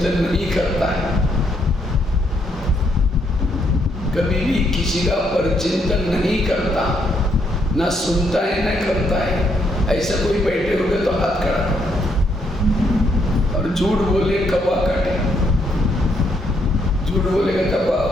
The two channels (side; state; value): both; normal; correlation 0.74